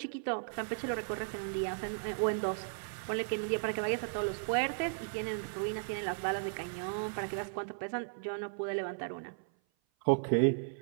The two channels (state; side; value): silent; left; 54 dB below the other